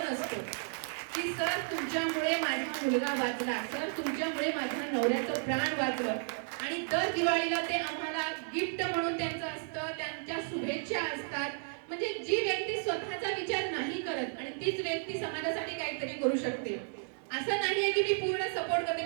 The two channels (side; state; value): left; silent; 56 dB below the other